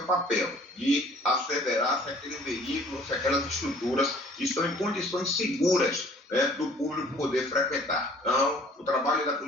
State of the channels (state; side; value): normal; both; correlation 0.54